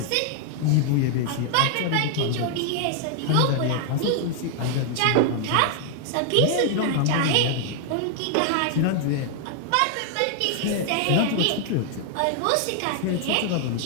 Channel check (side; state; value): both; different; correlation 0.00